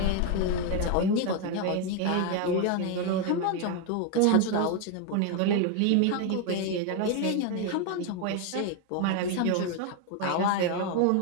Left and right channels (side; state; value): both; different; correlation 0.01